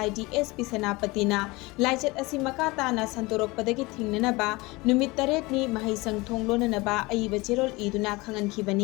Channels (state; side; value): quieter; right; 23.1 dB